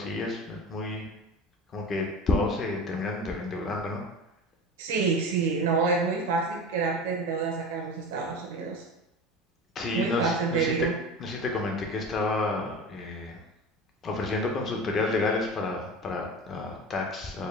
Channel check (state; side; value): normal; both; correlation 0.31